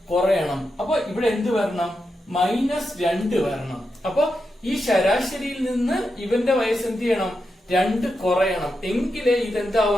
കുറയണം. അപ്പൊ ഇവിടെ എന്ത് വരണം? -2 വരണം. അപ്പൊ ഈ ശരാശരിയിൽ നിന്ന് ഇവന്റെ വയസ്സ് എന്ത് ചെയ്യണം? 2 കുറയണം, എങ്കിലേ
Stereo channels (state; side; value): normal; both; correlation 0.87